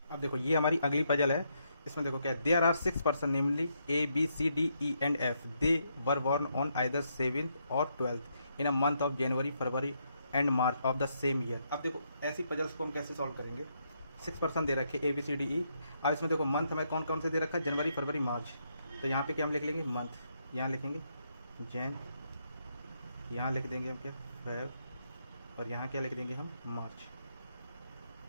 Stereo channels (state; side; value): inverted; both; correlation -0.77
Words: देखो ये हमारी अगली पजल है। इसमें देखो क्या है, there are 6 person namely ABCDEF। They were born on either 7th और 12th in a month of January, February and March of the same year. अब देखो ऐसी पजल्स को हम कैसे सॉल्व करेंगे। 6 पर्सन दे रखे ABCDE। अब इसमें देखो मंथ हमें कौन कौन से दे रखा है, जनवरी फरवरी मार्च। तो यहाँ पे क्या हम लिख लेंगे, मंथ, यहाँ लिखेंगे जैन, यहाँ लिख देंगे हम क्या, फेब, और यहाँ क्या लिख देंगे हम, मार्च।